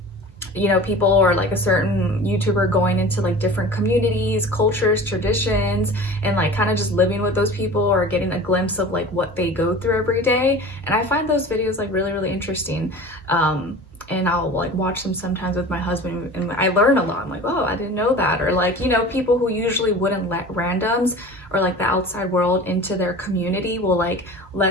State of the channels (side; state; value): both; normal; correlation 0.38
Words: you know, people or like a certain YouTuber going into like different communities, cultures, traditions, and like kind of just living with those people or getting a glimpse of like what they go through every day. And I find those videos like really, really interesting. And I'll like watch them sometimes with my husband, and I learn a lot. I'm like, oh, I didn't know that. Or like, you know, people who usually wouldn't let randoms or like the outside world into their community will like